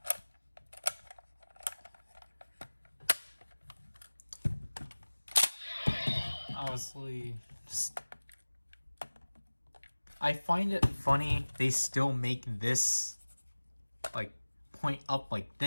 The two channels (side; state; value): both; inverted; correlation -1.00